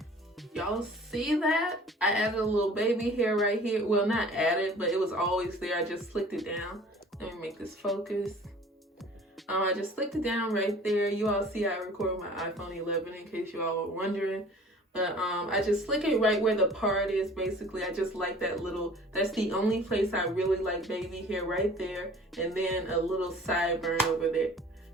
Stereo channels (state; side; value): normal; both; correlation 0.48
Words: Y'all see that? I added a little baby hair right here. Well, not added, but it was always there. I just slicked it down. Let me make this focus. I just slicked it down right there. You all see I record my iPhone 11 in case you all were wondering. But I just slick it right where the part is, basically. I just like that little, that's the only place I really like baby hair, right there. And then a little sideburn over there.